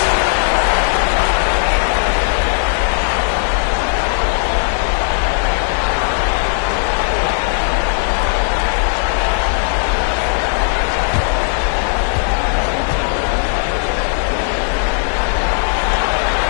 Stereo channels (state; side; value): silent; right; 55 dB below the other